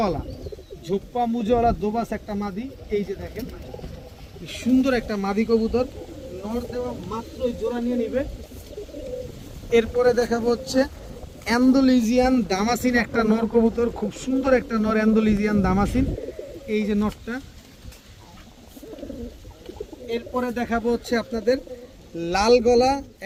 মুজাওয়ালা দোবাস একটা মাদি। এই যে দেখেন কি সুন্দর একটা মাদি কবুতর, নর দেওয়া মাত্রই জোড়া নিয়ে নিবে। এরপরে দেখাবো হচ্ছে অ্যান্ডোলিজিয়ান দামাসিন একটা নর কবুতর, খুব সুন্দর একটা নর অ্যান্ডোলিজিয়ান দামাসিন, এই যে নরটা। এরপরে দেখাবো হচ্ছে আপনাদের লাল গলা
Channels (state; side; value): identical; both; correlation 1.00